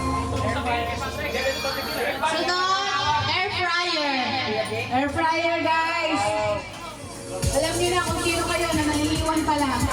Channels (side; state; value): both; identical; correlation 1.00